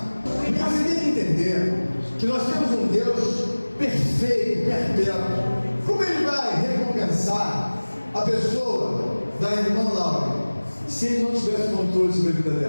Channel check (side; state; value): both; inverted; correlation -1.00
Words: Porque você tem que entender que nós temos um Deus perfeito, perpétuo. Como ele vai recompensar a pessoa da irmã Laura se ele não tivesse controle sobre a vida